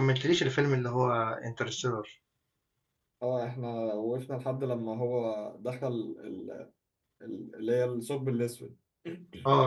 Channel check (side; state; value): both; identical; correlation 1.00